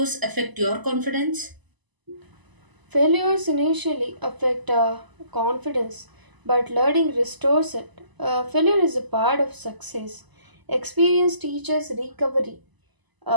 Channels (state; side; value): late; left; 1.0 ms